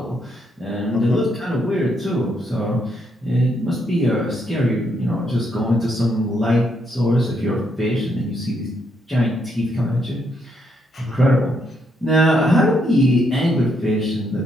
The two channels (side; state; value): both; normal; correlation 0.75